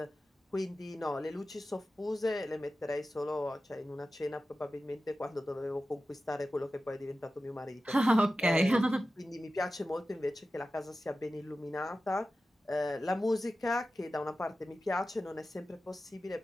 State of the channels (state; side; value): normal; both; correlation 0.94